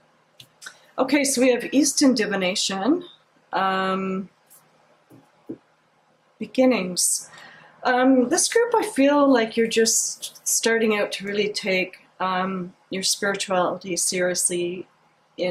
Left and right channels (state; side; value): identical; both; correlation 1.00